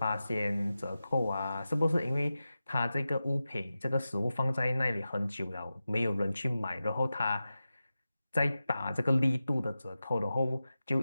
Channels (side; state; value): both; inverted; correlation -0.93